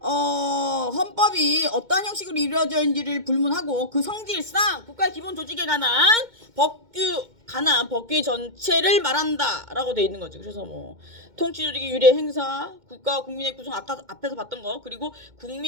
헌법이 어떠한 형식으로 이루어져 있는지를 불문하고 그 성질상 국가의 기본 조직에 관한 법규 전체를 말한다라고 돼 있는 거지. 그래서 통치조직의 유례 행사, 국가와 국민의 구성, 앞에서 봤던 거, 그리고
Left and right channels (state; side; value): late; left; 2.2 ms